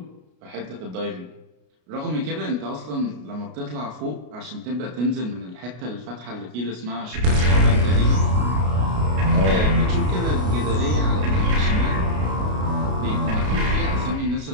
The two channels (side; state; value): left; late; 33 ms